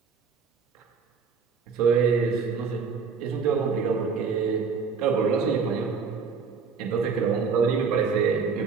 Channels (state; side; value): quieter; left; 5.5 dB